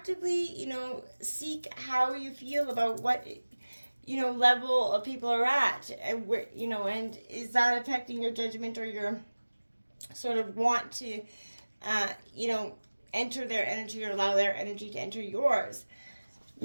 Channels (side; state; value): both; inverted; correlation -1.00